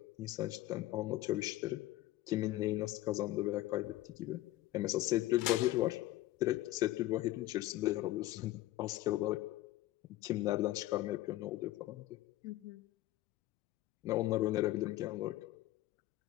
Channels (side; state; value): right; quieter; 16.2 dB